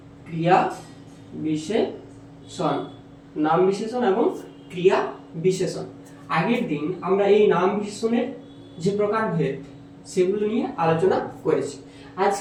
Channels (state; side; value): identical; both; correlation 1.00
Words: ক্রিয়া বিশেষণ। নাম বিশেষণ এবং ক্রিয়া বিশেষণ। আগের দিন আমরা এই নাম বিশেষণের যে প্রকারভেদ সেগুলো নিয়ে আলোচনা করেছি।